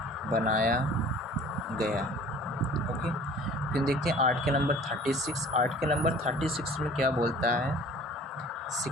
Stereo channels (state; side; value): normal; both; correlation 0.48